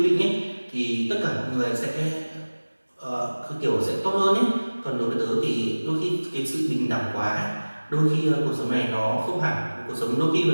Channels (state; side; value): inverted; both; correlation -1.00